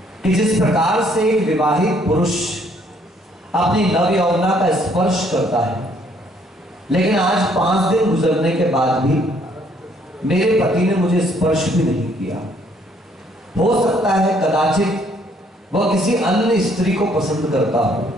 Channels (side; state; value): both; normal; correlation 0.65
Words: कि जिस प्रकार से एक विवाहित पुरुष अपनी नव यौवना का स्पर्श करता है, लेकिन आज 5 दिन गुजरने के बाद भी मेरे पति ने मुझे स्पर्श भी नहीं किया। हो सकता है कदाचित वह किसी अन्य स्त्री को पसंद करता